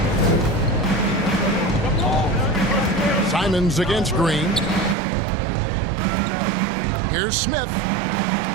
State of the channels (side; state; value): left; drops out; at 5.0 s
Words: Simons against Green. Here's Smith.